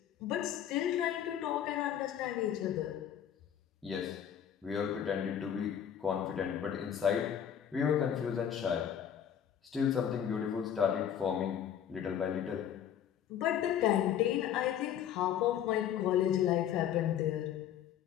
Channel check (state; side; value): quieter; right; 9.5 dB